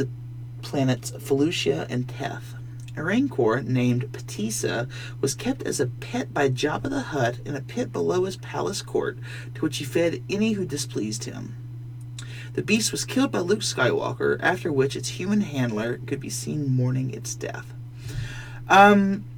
planets Felucia and Teth. A rancor named Patissa was kept as a pet by Jabba the Hutt in a pit below his palace court, to which he fed any who displeased him. The beast was killed by Luke Skywalker, after which its human handler could be seen mourning its death.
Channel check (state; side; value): identical; both; correlation 1.00